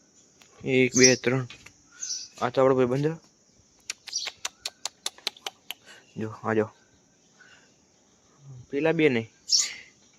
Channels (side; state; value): both; identical; correlation 1.00